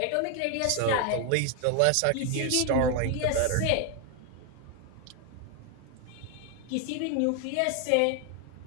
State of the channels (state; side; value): different; both; correlation 0.01